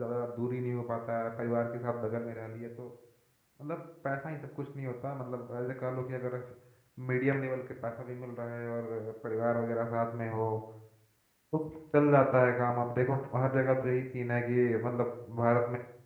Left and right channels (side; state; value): both; identical; correlation 1.00